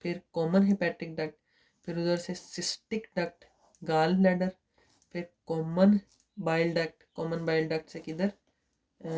फिर कॉमन हेपेटिक डक्ट, फिर उधर से सिस्टिक डक्ट, गाल ब्लैडर, फिर common bile duct, common bile duct से किधर,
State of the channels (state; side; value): identical; both; correlation 1.00